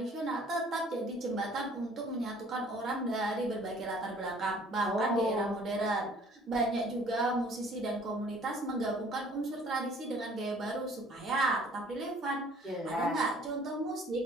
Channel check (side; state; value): both; normal; correlation 0.55